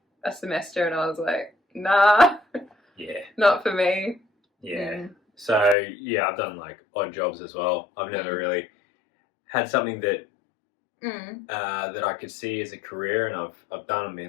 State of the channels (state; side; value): drops out; right; at 5.8 s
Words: a semester, and I was like, nah, not for me. So I've done like odd jobs as well. I've never really had something that that I could see as a career, and I've done and